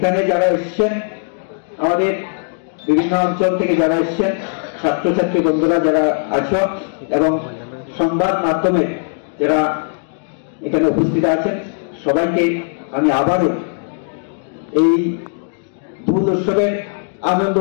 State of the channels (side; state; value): right; silent; digital silence